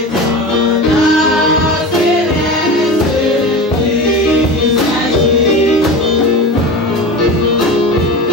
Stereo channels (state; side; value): normal; both; correlation 0.29